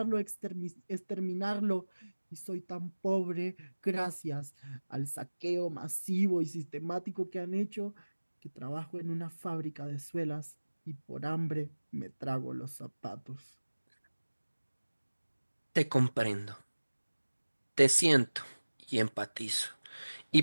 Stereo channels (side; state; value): both; inverted; correlation -1.00